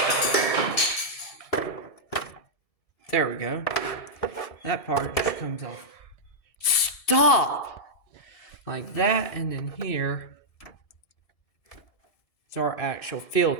There we go. That part just comes off. Stop! Like that, and then here. Our actual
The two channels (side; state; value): right; late; 1.7 ms